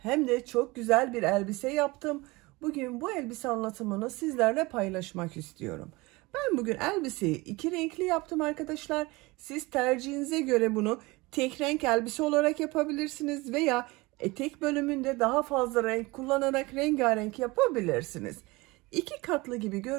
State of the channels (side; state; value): left; quieter; 23.0 dB